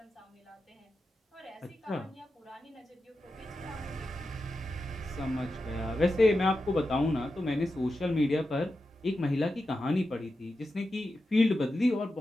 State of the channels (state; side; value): normal; both; correlation 0.90